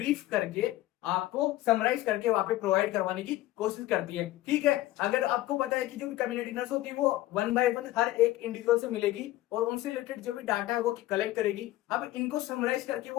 करके आपको समराइज करके वहां पे प्रोवाइड करवाने की कोशिश करती है। ठीक है, अगर आपको पता है कि जो भी कम्युनिटी नर्स होती है वो वन बाय वन हर एक इंडिविजुअल से मिलेगी और उनसे रिलेटेड जो भी डाटा है वो कलेक्ट करेगी। अब इनको समराइज करके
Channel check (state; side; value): quieter; right; 16.0 dB